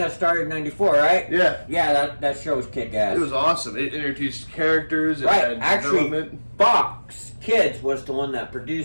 started in '94, right? Yeah. Yeah, that show was kick-ass. It was awesome. It introduced characters. It Right, had development. Fox Kids was the one that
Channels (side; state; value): both; inverted; correlation -1.00